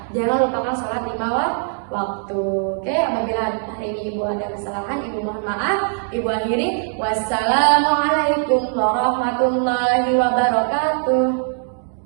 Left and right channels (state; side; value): silent; left; 65 dB below the other